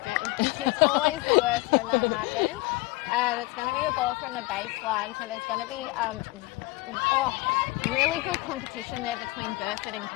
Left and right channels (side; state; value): right; quieter; 21.3 dB